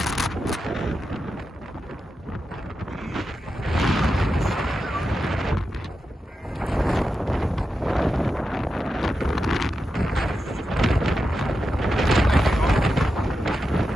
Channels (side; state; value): both; normal; correlation 0.89